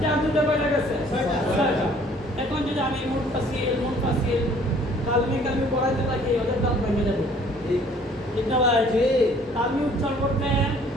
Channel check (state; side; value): normal; both; correlation 0.57